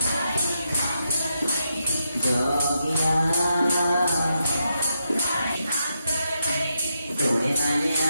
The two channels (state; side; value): inverted; both; correlation -0.82